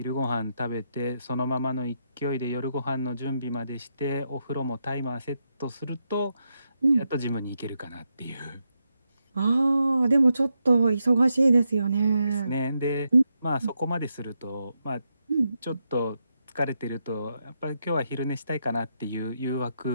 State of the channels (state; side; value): inverted; both; correlation -0.83